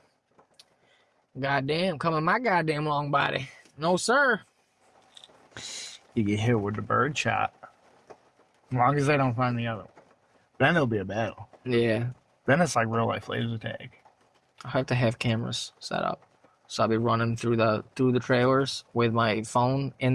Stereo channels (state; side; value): identical; both; correlation 1.00